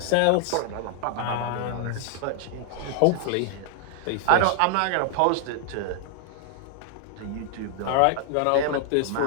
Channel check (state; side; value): different; both; correlation 0.00